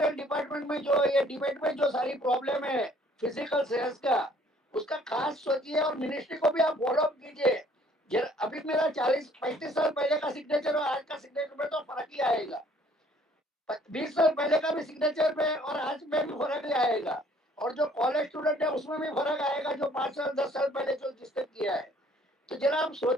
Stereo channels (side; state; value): both; normal; correlation 0.59